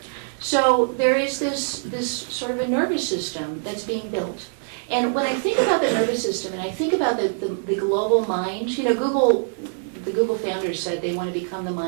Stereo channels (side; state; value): left; silent; 55 dB below the other